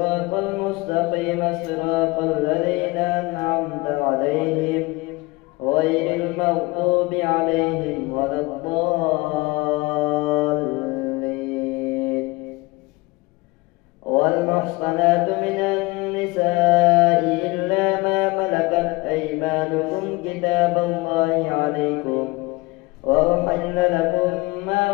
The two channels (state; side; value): quieter; right; 23.4 dB